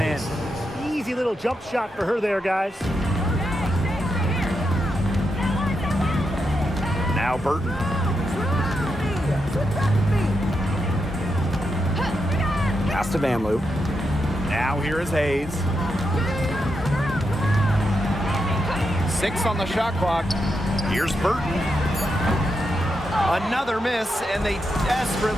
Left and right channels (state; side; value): normal; both; correlation 0.84